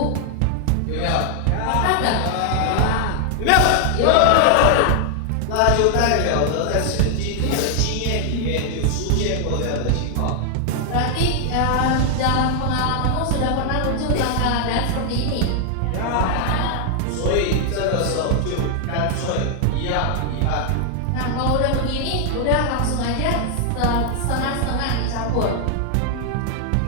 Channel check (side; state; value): both; different; correlation 0.00